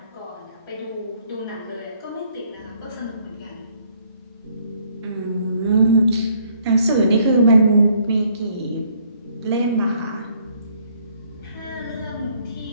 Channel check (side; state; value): both; inverted; correlation -0.65